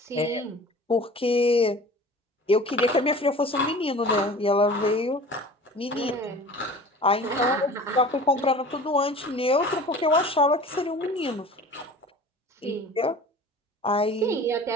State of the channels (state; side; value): normal; both; correlation 0.42